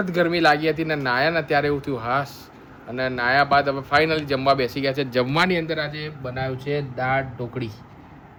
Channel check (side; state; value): both; identical; correlation 1.00